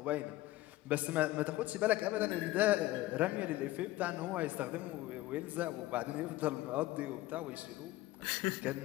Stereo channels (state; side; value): quieter; right; 16.9 dB